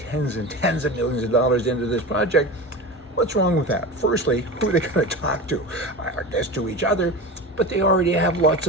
and tens of millions of dollars into this project. What's wrong with that? Firstly, who are they going to talk to? I guess to each other, but they already have lots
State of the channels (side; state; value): both; normal; correlation 0.28